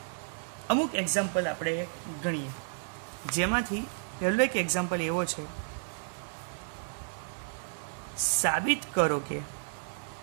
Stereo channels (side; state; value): left; silent; digital silence